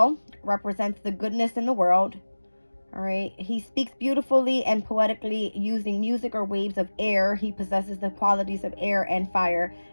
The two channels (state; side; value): inverted; both; correlation -1.00